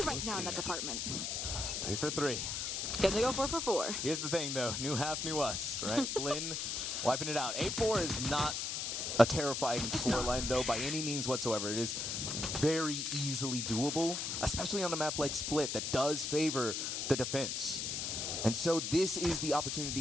right now in that department. 3 for 3. Can they go 4 for 4? Here's the thing, though. New half, new us, right? Blinn wiping it out. 8-4 is not a terrifying scoreline, though, by any means whatsoever. It is very easily doable, especially on a map like Split that does favor the defense. And so this is the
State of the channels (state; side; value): noise; left; hiss, 2 dB below the sound